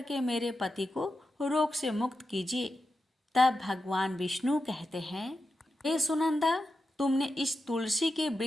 मेरे पति को रोग से मुक्त कीजिए। तब भगवान विष्णु कहते हैं, हे सुनंदा, तुमने इस तुलसी के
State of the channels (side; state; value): both; normal; correlation 0.89